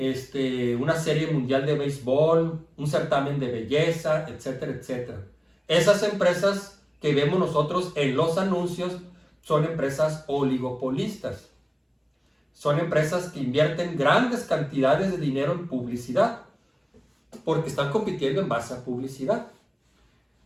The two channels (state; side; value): identical; both; correlation 1.00